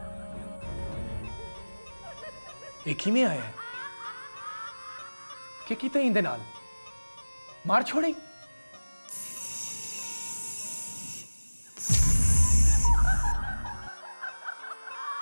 एक ही में आया है कि किते इंदे नाल मार छोड़ी।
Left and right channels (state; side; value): inverted; both; correlation -1.00